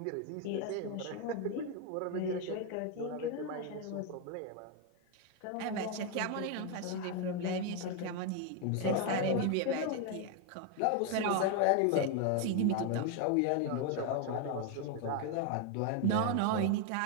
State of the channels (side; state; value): both; different; correlation 0.01